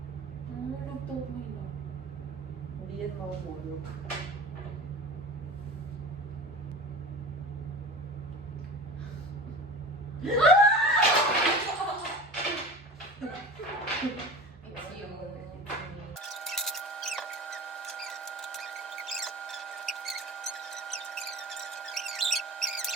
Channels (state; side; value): normal; both; correlation 0.35